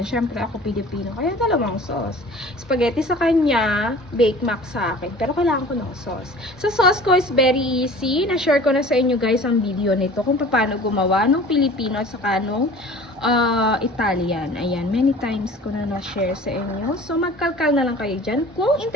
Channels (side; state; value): both; normal; correlation 0.44